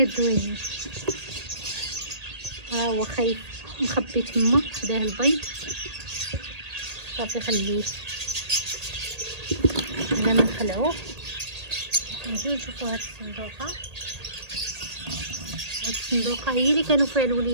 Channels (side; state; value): left; late; 1.8 ms